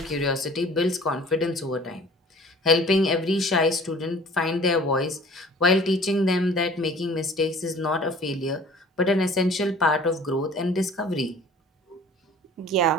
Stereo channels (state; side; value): normal; both; correlation 0.48